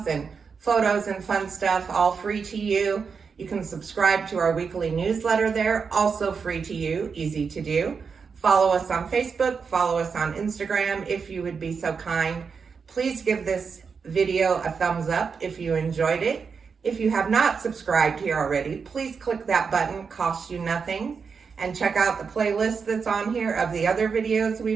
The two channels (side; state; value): left; quieter; 5.6 dB